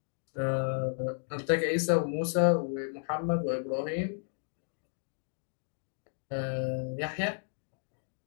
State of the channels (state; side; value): silent; right; digital silence